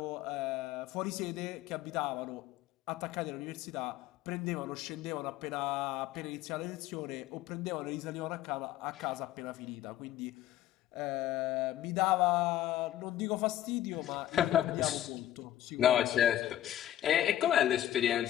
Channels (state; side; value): quieter; right; 12.7 dB